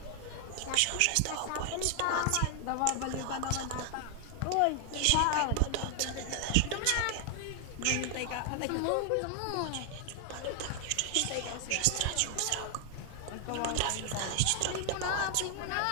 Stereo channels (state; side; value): different; both; correlation 0.00